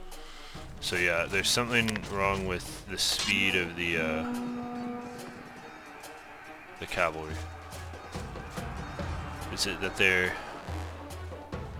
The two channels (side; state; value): both; identical; correlation 1.00